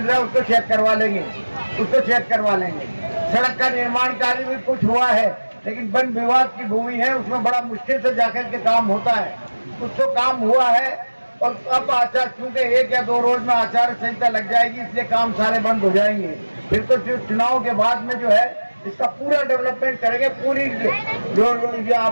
रहा है, उसको चेक करवा लेंगे। सड़क का निर्माण कार्य भी कुछ हुआ है, लेकिन वन विभाग की भूमि है, उसमें बड़ा मुश्किल से जाकर के काम होता है। कुछ तो काम हुआ है और अब आचार, चूंकि 1 या 2 रोज में आचार संहिता लग जाएगी, इसलिए काम सारे बंद हो जाएंगे। फिर तो चुनाव के बाद में जो है इसका पूरा डेवलपमेंट करेंगे। पूरी जो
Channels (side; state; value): both; inverted; correlation -1.00